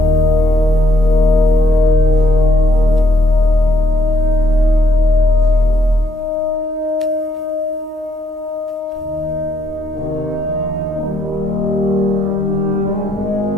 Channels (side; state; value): both; normal; correlation 0.71